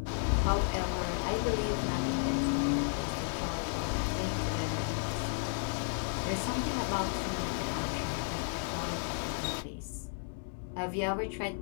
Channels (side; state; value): right; silent; 56 dB below the other